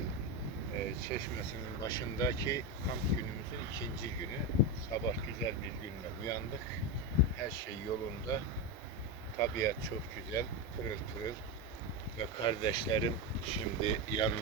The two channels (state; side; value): normal; both; correlation 0.13